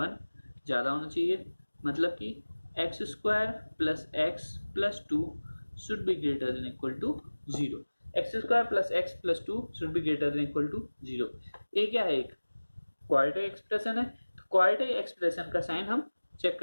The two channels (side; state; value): both; inverted; correlation -1.00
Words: ज्यादा होना चाहिए। मतलब कि x² + x + 2 should be greater than equal to 0। x² + x + 2 should be greater than equal to 0। ये क्या है, एक क्वाड्रेटिक एक्सप्रेशन है। तो क्वाड्रेटिक एक्सप्रेशन का साइन हम चेक